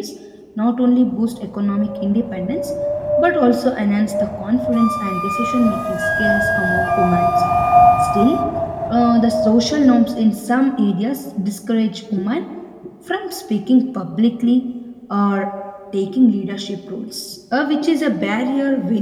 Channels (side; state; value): both; identical; correlation 1.00